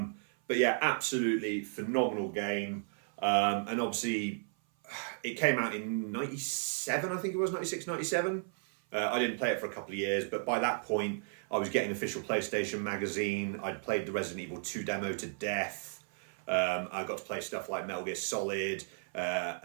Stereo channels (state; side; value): silent; left; 55 dB below the other